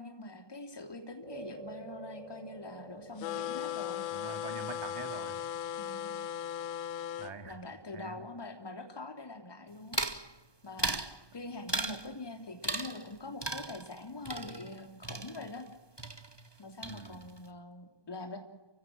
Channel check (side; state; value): right; late; 1.2 ms